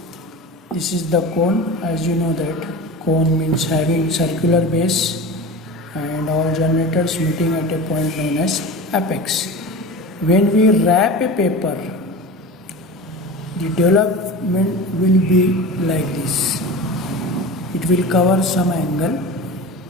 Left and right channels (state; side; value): normal; both; correlation 0.32